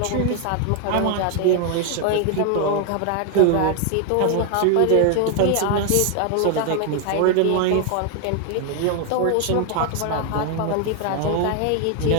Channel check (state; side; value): different; both; correlation 0.00